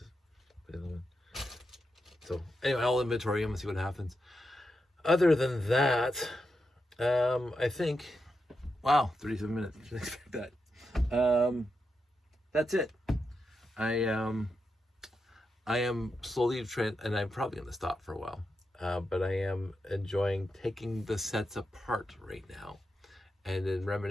Put the other one. So anyway, I'll inventory them and see what happens. Other than that, I think, wow, 37 minutes. Didn't expect that. That's it. I am slowly and I'm probably going to stop for a while. But I am enjoying taking the sets apart right now, and then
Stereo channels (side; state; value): both; normal; correlation 0.86